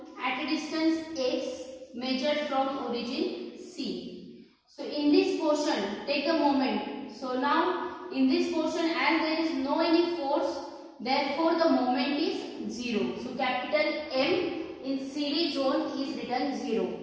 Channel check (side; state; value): both; identical; correlation 1.00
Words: at a distance x measured from origin C. So in this portion, take a moment. So now in this portion, as there is no any force, therefore the moment is 0. So capital M in CD zone is written 0.